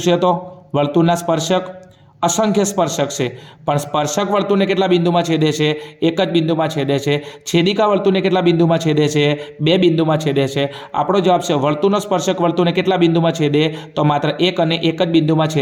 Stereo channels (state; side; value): identical; both; correlation 1.00